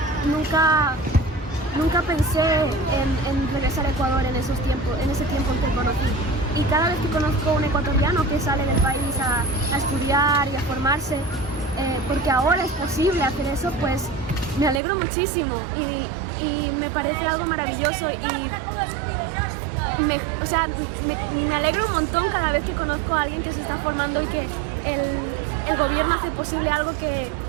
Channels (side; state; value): left; drops out; at 14.8 s